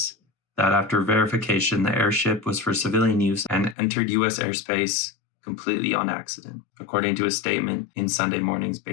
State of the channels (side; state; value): right; drops out; at 3.8 s